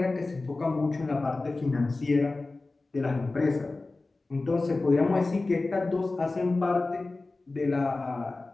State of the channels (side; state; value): right; quieter; 3.3 dB